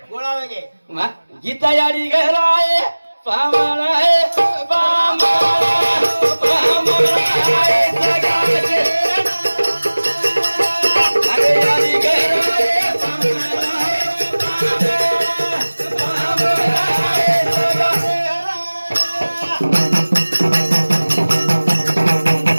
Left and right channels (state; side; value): inverted; both; correlation -1.00